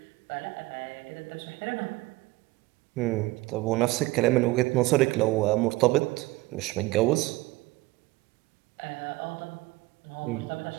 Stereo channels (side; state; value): left; quieter; 20.4 dB